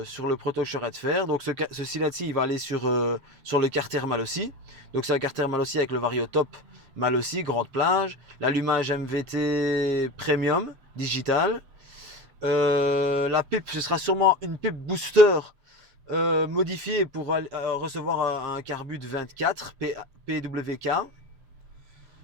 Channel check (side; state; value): left; late; 7.4 ms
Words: proto que je serai de faire. Donc ceci là-ci, il va aller sur le Carter Malossi. Donc c'est un Carter Malossi avec le Variotop Malossi, grande plage. L'allumage MVT Premium, digital. La pipe, ce sera sûrement une pipe booster modifiée pour recevoir un carbut 24 PWK.